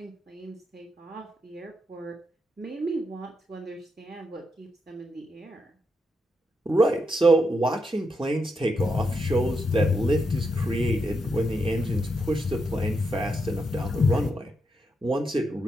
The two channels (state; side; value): normal; both; correlation 0.82